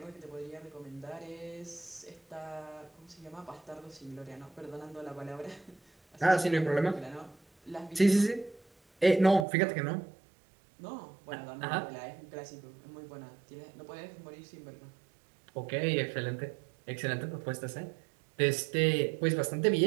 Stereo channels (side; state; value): left; drops out; at 9.5 s